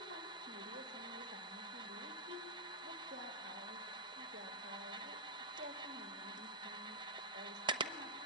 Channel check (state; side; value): normal; both; correlation -0.11